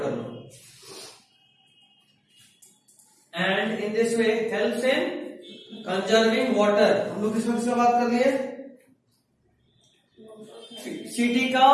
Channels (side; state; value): both; identical; correlation 1.00